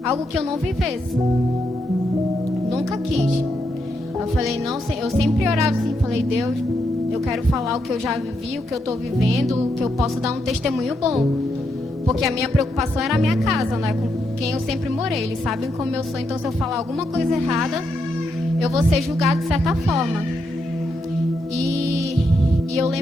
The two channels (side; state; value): both; normal; correlation 0.81